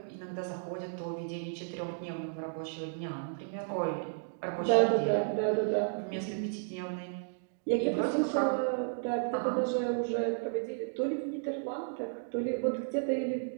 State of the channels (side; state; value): left; silent; digital silence